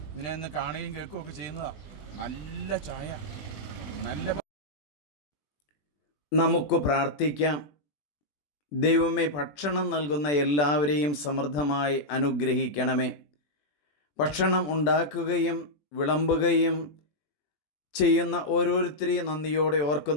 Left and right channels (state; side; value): late; right; 20 ms